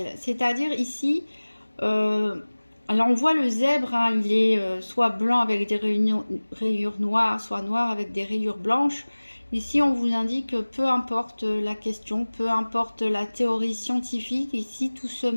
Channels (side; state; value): both; inverted; correlation -1.00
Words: C'est-à-dire ici, alors on voit le zèbre, hein, il est soit blanc avec des rayures noires, soit noir avec des rayures blanches. Ici, on vous indique que peu importe la question, peu importe la théorie scientifique, ici tout se